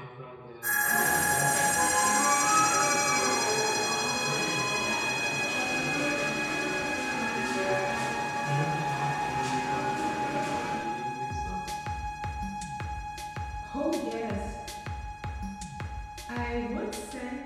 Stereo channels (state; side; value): identical; both; correlation 1.00